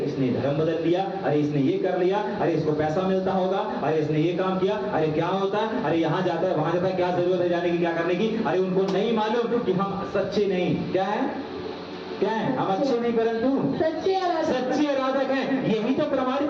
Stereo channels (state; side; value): identical; both; correlation 1.00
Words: इसने धर्म बदल लिया, अरे इसने ये कर लिया, अरे इसको पैसा मिलता होगा, अरे इसने ये काम किया, अरे क्या होता है, अरे यहाँ जाता है, वहां जाता है, क्या जरूरत है जाने की, क्या करने की, अरे उनको नहीं मालूम कि हम सच्चे नहीं, क्या है, क्या है, हम अच्छे नहीं परंतु सच्चे आराधक हैं। यही तो प्रमाणित